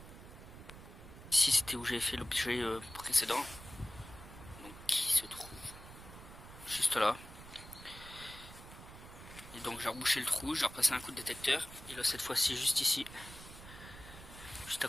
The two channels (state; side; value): noise; right; rumble, 15 dB below the sound